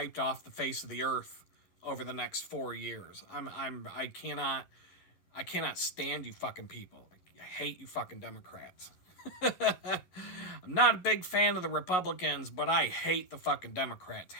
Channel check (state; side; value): late; right; 11 ms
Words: off the face of the earth over the next 4 years. I cannot stand you fucking people. I hate you fucking Democrats. I'm not a big fan of the Republicans, but I hate the fucking Democrats.